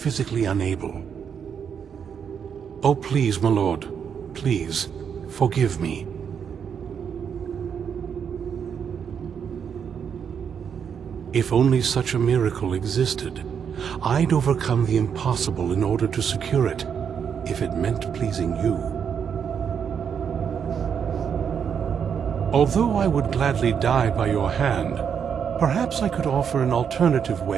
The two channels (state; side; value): quieter; left; 7.4 dB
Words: unable. Oh, please, my lord. Please, forgive me. If only such a miracle existed, I'd overcome the impossible in order to secure it, if it meant pleasing you. Although I would gladly die by your hand, perhaps I could offer an alternative